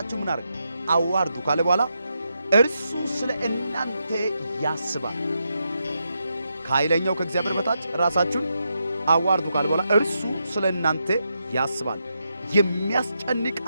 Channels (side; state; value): both; inverted; correlation -0.84